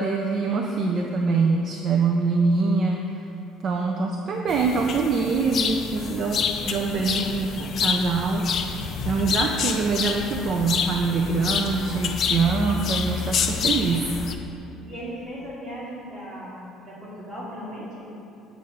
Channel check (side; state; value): both; normal; correlation 0.63